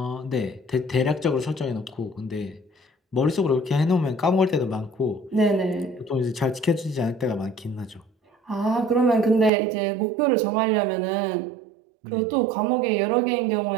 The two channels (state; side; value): drops out; left; at 9.5 s